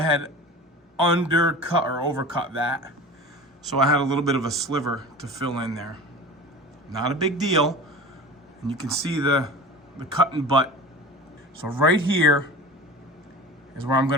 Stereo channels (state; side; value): normal; both; correlation 0.36